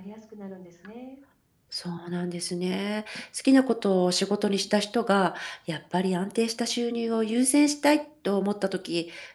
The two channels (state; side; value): identical; both; correlation 1.00